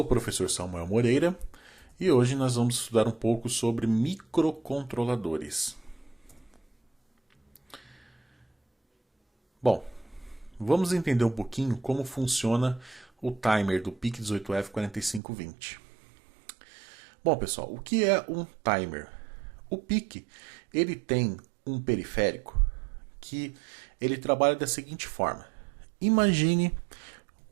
o professor Samuel Moreira e hoje nós vamos estudar um pouco sobre microcontroladores. Bom, vamos entender um pouquinho como funciona o timer do PIC18F4520. Bom, pessoal, o que é um timer? O PIC, ele tem um periférico que ele trabalha da seguinte forma. Imagine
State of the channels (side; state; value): left; drops out; at 15.2 s